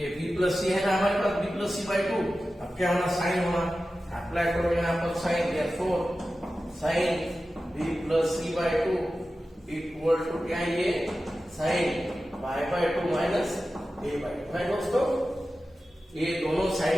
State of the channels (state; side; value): normal; both; correlation 0.94